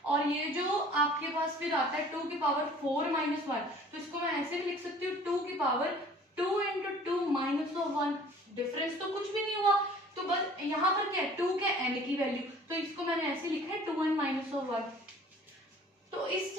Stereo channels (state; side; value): normal; both; correlation 0.50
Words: और ये जो आपके पास फिर आता है 2 की पावर 4-1, तो इसको मैं ऐसे भी लिख सकती हूँ 2 की पावर 2 × 2 -1। डिफरेंस तो कुछ भी नहीं हुआ, तो बस यहाँ पर क्या है, 2 के n की वैल्यू, तो इसको मैंने ऐसे लिखा है 2n-1। तो इस